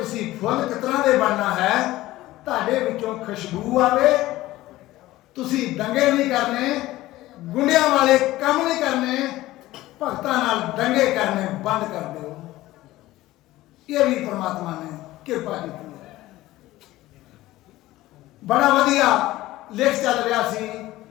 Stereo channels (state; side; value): quieter; right; 16.8 dB